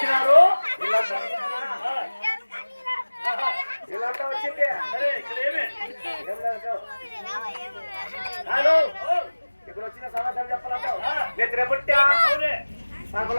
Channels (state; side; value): inverted; both; correlation -1.00